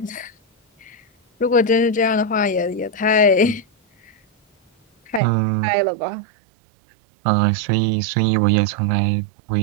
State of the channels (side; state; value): left; drops out; at 5.2 s